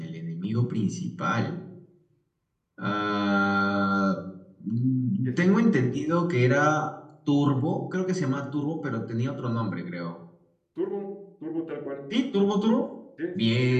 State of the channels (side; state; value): both; identical; correlation 1.00